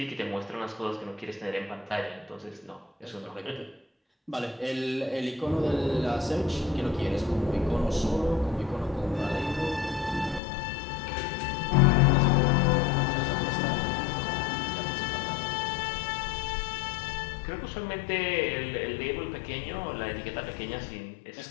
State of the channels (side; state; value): right; drops out; at 10.4 s